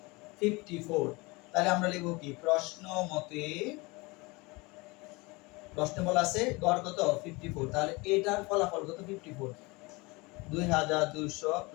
54। তাহলে আমরা লিখব কি প্রশ্নে বলা আছে গড় কত 54, তাহলে এটার ফলাফল কত 54, 2200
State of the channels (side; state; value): right; quieter; 25.0 dB